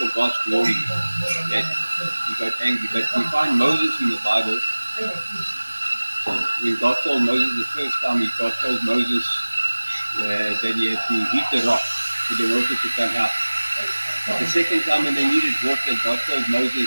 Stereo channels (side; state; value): both; inverted; correlation -1.00